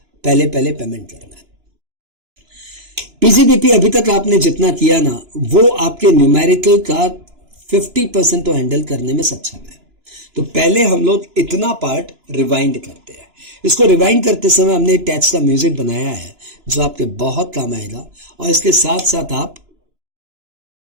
पहले पहले पेमेंट करना है. PGBP अभी तक आपने जितना किया ना वो आपके न्यूमेरिकल का 50% तो हैंडल करने में सक्षम है. तो पहले हम लोग इतना पार्ट रिवाइंड करते हैं। इसको रिवाइंड करते समय हमने एक टैच का म्यूजिक बनाया है जो आपके बहुत काम आएगा, और इसके साथ साथ आप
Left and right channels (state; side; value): late; left; 2.9 ms